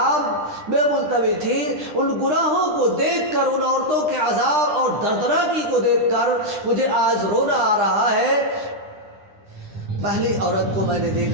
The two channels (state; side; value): late; left; 9.8 ms